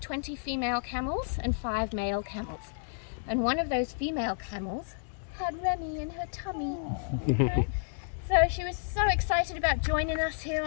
20 female camels and 5 male camels. And one of those female camels had Remy in her tummy. Okay? So she was so excited about joining us here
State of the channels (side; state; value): right; silent; digital silence